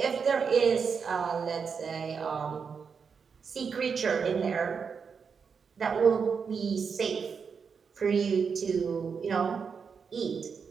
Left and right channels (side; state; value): left; quieter; 6.0 dB